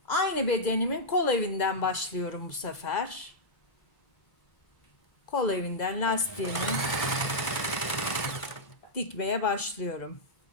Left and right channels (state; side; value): late; right; 2.0 ms